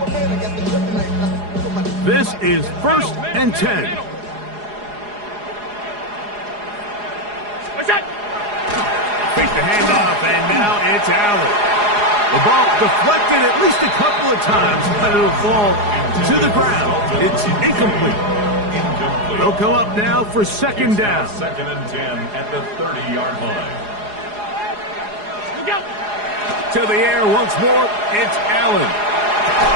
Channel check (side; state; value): left; late; 4.8 ms